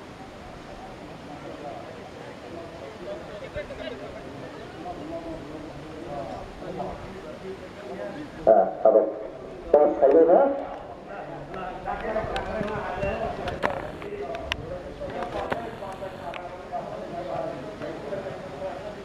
Apa? Bos saya dah.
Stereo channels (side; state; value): both; identical; correlation 1.00